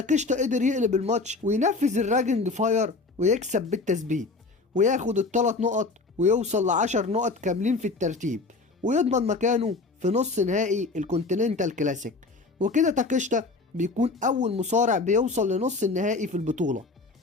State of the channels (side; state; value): right; quieter; 3.7 dB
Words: قدر يقلب الماتش وينفذ الراجنج فاير ويكسب بالتثبيت وياخد ال3 نقط ويوصل ل10 نقط كاملين في الترتيب ويضمن مكانه في نص نهائي الكونتيننتال كلاسيك. وكده تاكيشتا بيكون أول مصارع بيوصل لنص النهائي في البطولة.